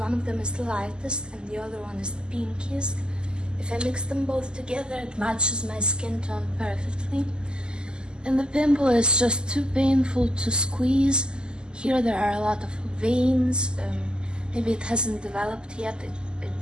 of them is the lightest and the other one is the pinkiest. If I mix them both together, it matches my skin tone perfectly. And the pimple is just too painful to squeeze. Here there are a lot of veins. Maybe it hasn't developed yet, it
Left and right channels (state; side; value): late; left; 0.047 ms